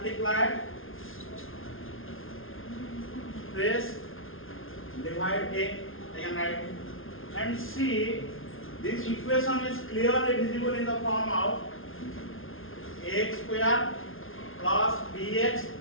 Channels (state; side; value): late; right; 0.60 ms